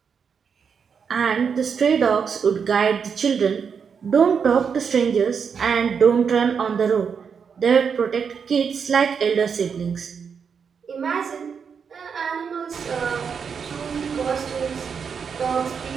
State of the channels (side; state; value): left; quieter; 6.5 dB